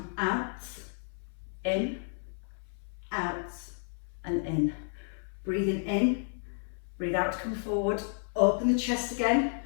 out, in, out, and in. Breathing in, breathe out to come forward, open the chest again,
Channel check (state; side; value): silent; right; 57 dB below the other